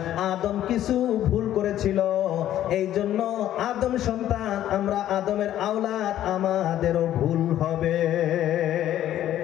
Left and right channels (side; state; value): right; quieter; 12.2 dB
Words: আদম কিছু ভুল করেছিল, এইজন্য আদম সন্তান আমরা আদমের আওলাদ, আমাদেরও ভুল হবে।